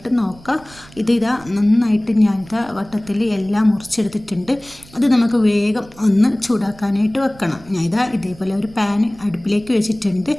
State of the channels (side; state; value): right; noise; rumble, 22 dB below the sound